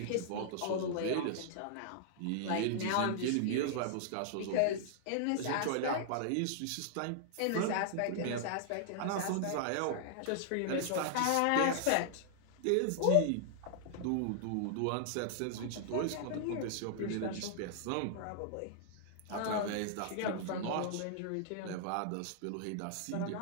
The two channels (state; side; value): different; both; correlation -0.01